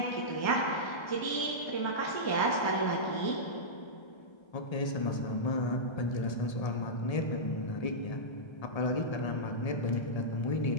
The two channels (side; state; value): right; late; 1.3 ms